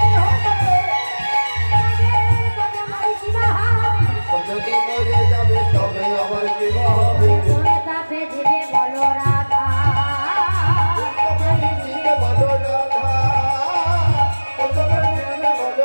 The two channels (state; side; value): inverted; both; correlation -1.00